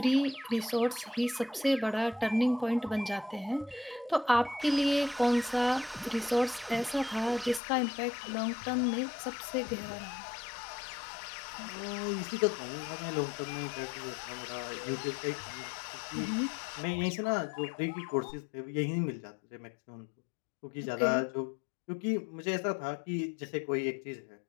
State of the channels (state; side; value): drops out; right; at 7.6 s